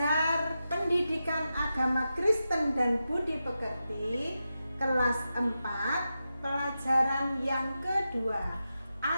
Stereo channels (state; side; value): inverted; both; correlation -0.90